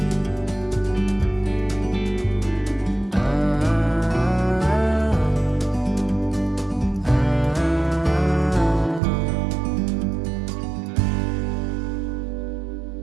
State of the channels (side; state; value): left; drops out; at 9.0 s